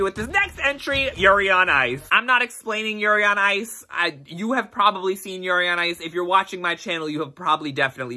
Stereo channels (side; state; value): both; identical; correlation 1.00